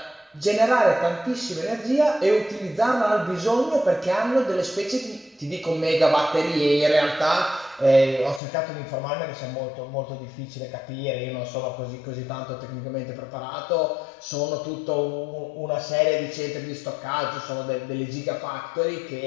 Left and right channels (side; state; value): right; drops out; at 8.4 s